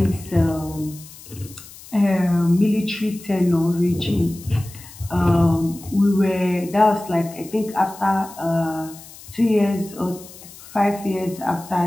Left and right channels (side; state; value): left; noise; hiss, 18 dB below the sound